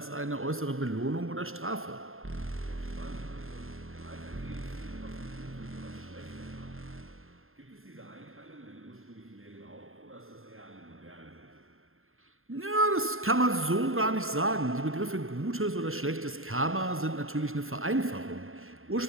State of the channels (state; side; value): late; left; 0.61 ms